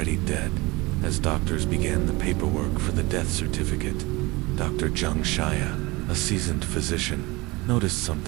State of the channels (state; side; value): quieter; left; 23.1 dB